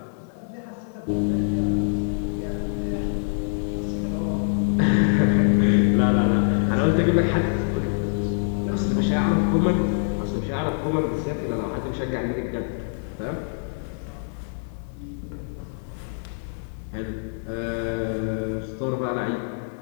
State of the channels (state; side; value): silent; right; digital silence